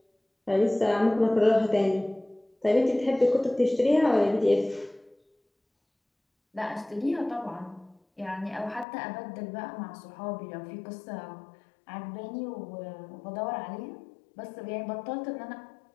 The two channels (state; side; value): drops out; right; at 8.8 s